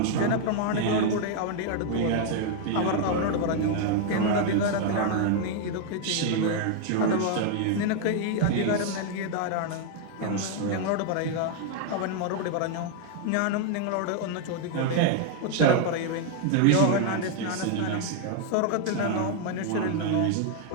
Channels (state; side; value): different; both; correlation 0.00